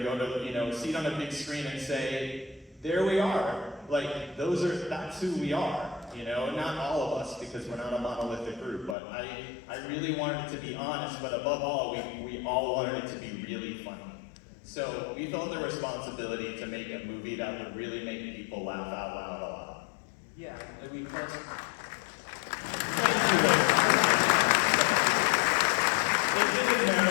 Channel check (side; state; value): right; drops out; at 9.0 s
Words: go to, you know, see it on a big screen and say, there we are. Like, that's who we are. You know, not all of us, because we're not a monolithic group, but I really wanted it to be honest, but above all, we all wanted it to be really funny. So we felt the responsibility to make a movie that would really make people laugh out loud a lot. Yeah, I mean, that's... It didn't